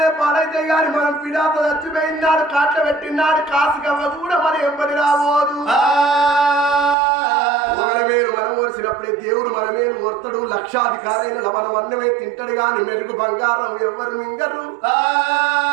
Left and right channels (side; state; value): left; drops out; at 7.0 s